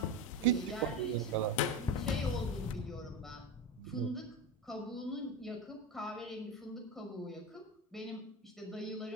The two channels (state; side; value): normal; both; correlation 0.21